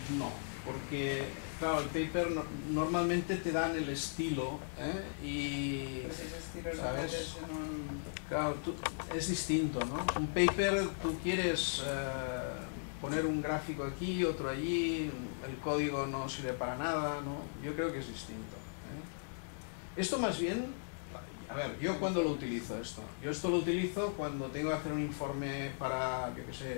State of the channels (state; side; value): silent; right; digital silence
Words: no, porque claro, el paper normalmente te dan el estilo, y Pues ese estilo lo ¿sabes? metes en un... Claro, es distinto, ¿no? Un paper, tú quieres poner un gráfico aquí, otro allí, el código no sirve para nada, ¿no? Yo creo que es distinto. Esto más bien, a ver, ¿yo cuándo lo utilizo esto? Yo esto lo utilizo cuando tengo que hacer un informe para, yo qué